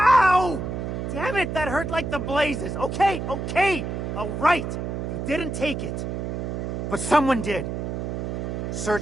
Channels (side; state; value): right; noise; hum, 4 dB below the sound